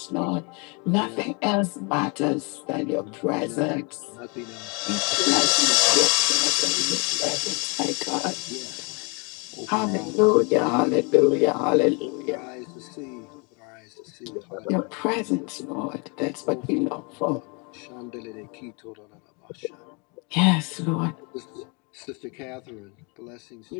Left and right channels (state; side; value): quieter; right; 32.5 dB